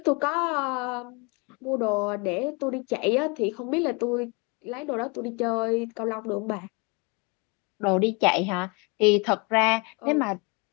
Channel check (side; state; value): right; quieter; 30.2 dB